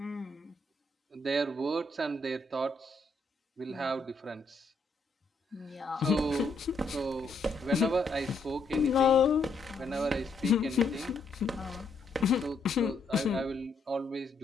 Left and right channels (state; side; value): quieter; right; 3.3 dB